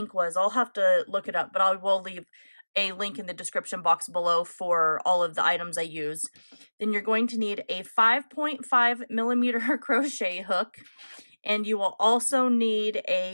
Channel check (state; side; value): inverted; both; correlation -1.00